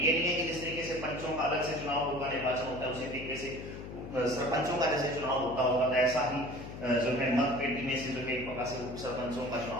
नहीं है कि जिस तरीके से पंचों का अलग से चुनाव होगा, निर्वाचन होता है, उसी तरीके से सरपंचों का जैसे चुनाव होता होगा, तो ऐसा ही जो है मत पेटी में से जो है एक प्रकार से उप सरपंचों का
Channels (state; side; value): noise; left; hum, 10 dB below the sound